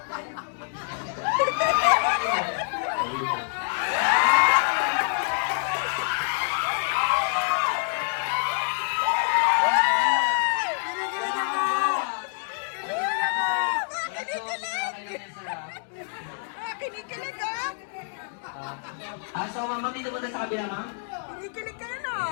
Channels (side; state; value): right; silent; digital silence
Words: Kinikilig ka? So ma'am, dito muna sa kabila, ma'am. Kinikilig ka